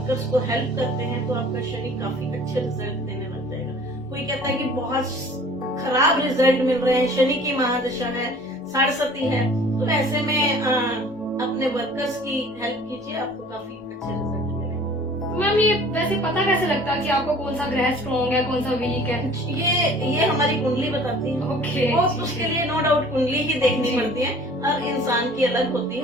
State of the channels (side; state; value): both; normal; correlation 0.49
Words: को हेल्प करते हैं तो आपका शनि काफी अच्छे रिजल्ट देने लग जाएगा। कोई कहता है कि बहुत खराब रिजल्ट मिल रहे हैं, शनि की महादशा है, साढ़सती है, तो ऐसे में अपने वर्कर्स की हेल्प कीजिए, आपको काफी अच्छे रिजल्ट मिलेंगे। मैम ये वैसे पता कैसे लगता है कि आपको कौन सा ग्रह स्ट्रॉन्ग है, कौन सा वीक है? ये हमारी कुंडली बताती है। ओके, उसके लिए नो डाउट कुंडली ही देखनी पड़ती है, हर इंसान की अलग होती